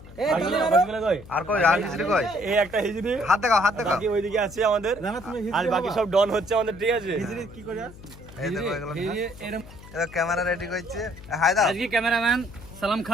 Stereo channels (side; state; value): left; noise; hum, 18 dB below the sound